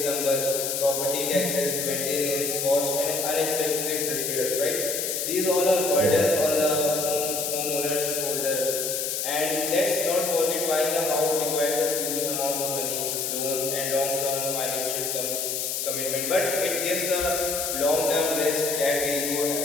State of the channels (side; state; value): left; noise; hiss, 1 dB below the sound